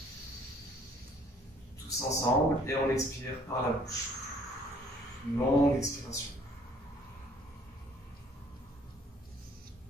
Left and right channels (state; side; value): normal; both; correlation 0.59